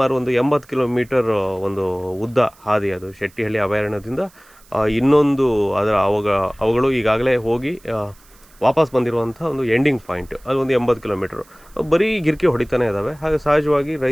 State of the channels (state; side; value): noise; right; hiss, 28 dB below the sound